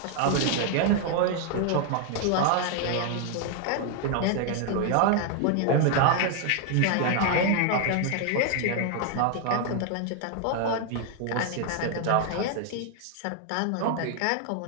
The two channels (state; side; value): different; both; correlation 0.00